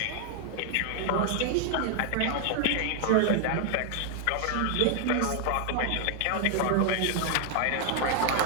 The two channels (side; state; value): both; different; correlation 0.00